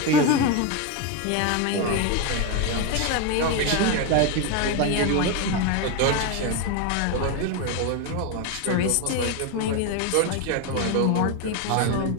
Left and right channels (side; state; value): both; different; correlation 0.02